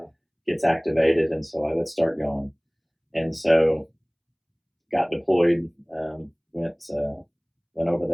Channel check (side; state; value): both; identical; correlation 1.00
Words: gets activated, and so I would start going. And so got deployed, went over